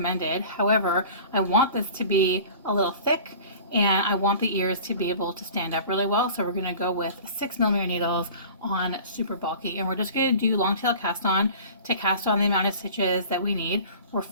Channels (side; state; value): both; inverted; correlation -0.42